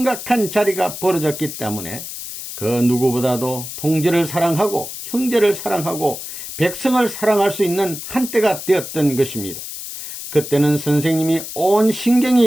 자리가 벌어졌기 때문에 그 누구보다도 동지를 사랑하고 형제를 사랑하고 백성을 사랑할 수 있는 한때가 되었던 것입니다. 그때는 선생님이 온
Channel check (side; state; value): left; noise; hiss, 9 dB below the sound